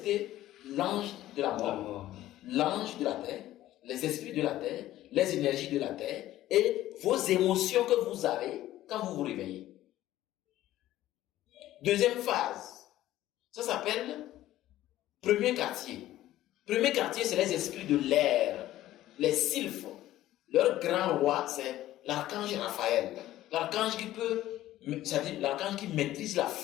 l'ange de la mort, l'ange de la terre, les esprits de la terre, les énergies de la terre et vos émotions que vous avez quand vous vous réveillez. Deuxième phase, ça s'appelle premier quartier. Premier quartier, c'est les esprits de l'air, les sylphes. Leur grand roi, c'est l'archange Raphaël. L'archange qui peut, c'est-à-dire l'archange qui maîtrise la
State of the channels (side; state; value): right; quieter; 14.4 dB